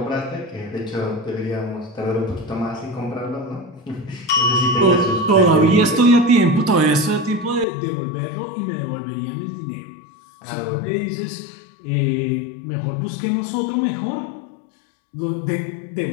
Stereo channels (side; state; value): right; drops out; at 7.7 s